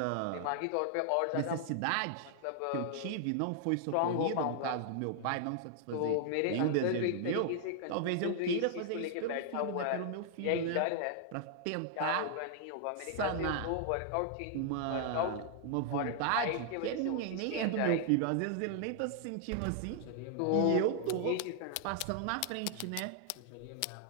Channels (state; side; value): different; both; correlation 0.00